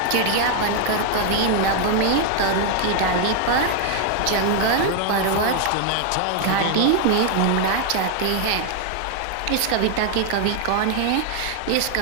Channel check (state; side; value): different; both; correlation 0.00